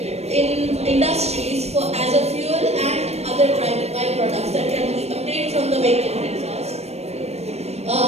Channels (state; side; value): late; left; 0.31 ms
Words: in industries as a fuel and other byproducts that can be obtained from the vehicle exhaust.